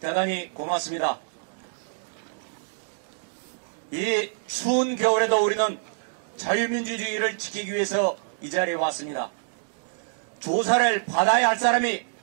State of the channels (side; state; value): left; silent; digital silence